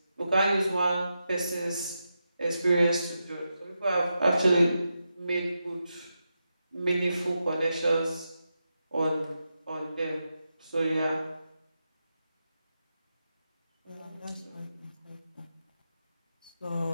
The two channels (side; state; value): both; inverted; correlation -0.88